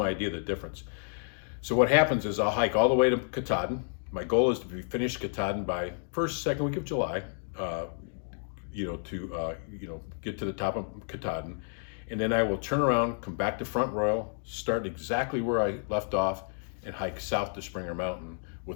idea of the difference. So what happens is I'll hike all the way to Katahdin. My goal is to be finished Katahdin by second week of July, get to the top of Katahdin. And then I will turn around, come back to Front Royal, start exactly where I left off, and hike south to Springer Mountain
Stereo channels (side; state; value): right; silent; 57 dB below the other